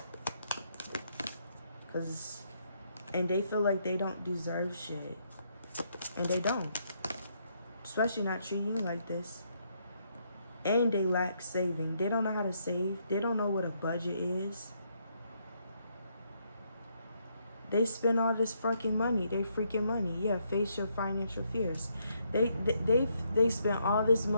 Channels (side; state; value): both; inverted; correlation -0.74